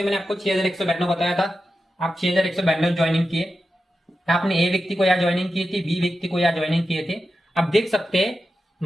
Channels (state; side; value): normal; both; correlation 0.90